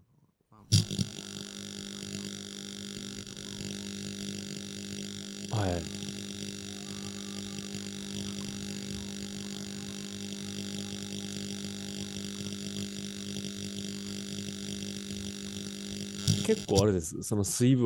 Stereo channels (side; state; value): both; identical; correlation 1.00